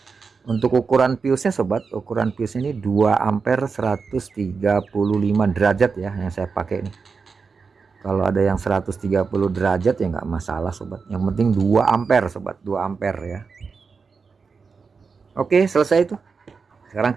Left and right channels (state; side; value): quieter; left; 5.1 dB